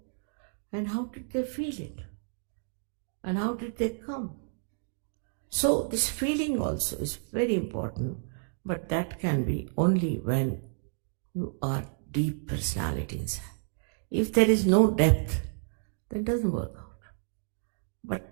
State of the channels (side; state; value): left; silent; digital silence